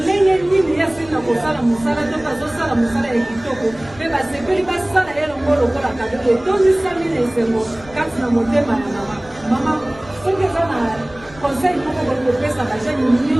ndenge nini ye asili na kosala mosala to bazosala mosala ya kitoko mpe basepeli basala ye longo lokola kado etondisami na esengo kati na motema ya mama mama soki eza na conseil moko boye kopesa bajene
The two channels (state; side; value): noise; left; rumble, 21 dB below the sound